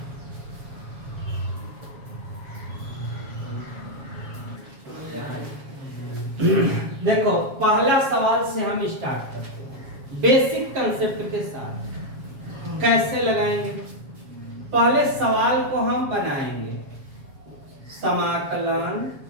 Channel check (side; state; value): left; late; 7.3 ms